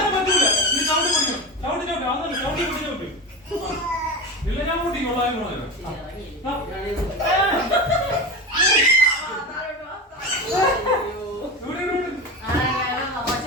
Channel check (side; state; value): both; normal; correlation 0.24